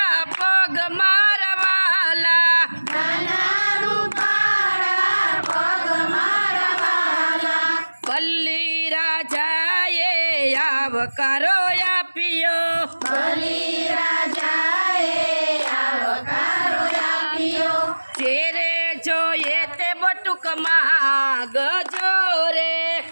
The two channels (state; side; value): inverted; both; correlation -1.00